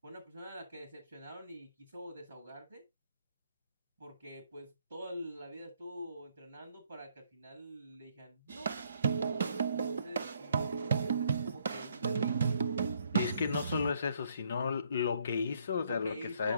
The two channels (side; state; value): both; inverted; correlation -0.68